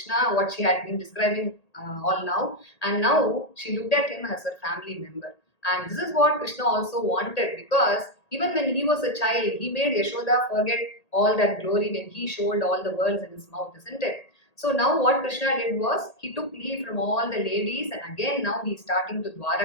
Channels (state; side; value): late; right; 1.8 ms